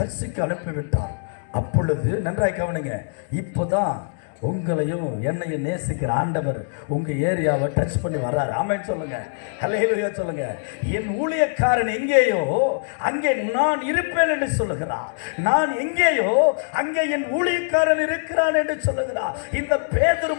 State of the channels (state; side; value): silent; right; digital silence